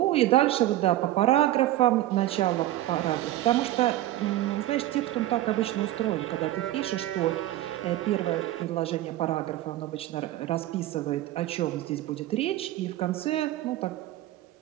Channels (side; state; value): left; quieter; 14.7 dB